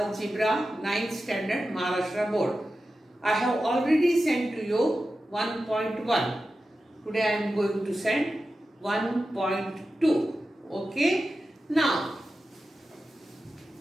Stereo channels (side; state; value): both; normal; correlation 0.92